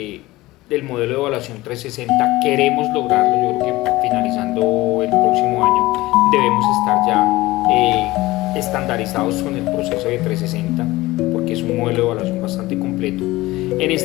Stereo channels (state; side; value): quieter; right; 18.9 dB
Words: modelo de evaluación 360, queremos lograrlo. Yo creo que finalizando el próximo año debemos estar ya estandarizados con el proceso de 360, porque es un modelo de evaluación bastante completo. En